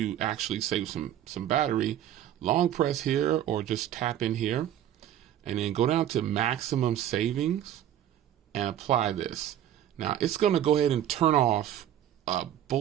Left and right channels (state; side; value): quieter; left; 11.1 dB